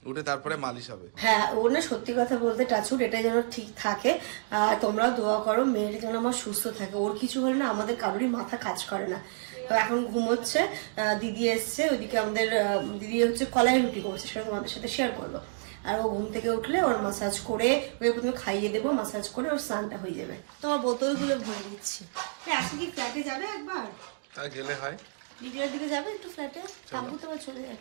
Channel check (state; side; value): silent; left; digital silence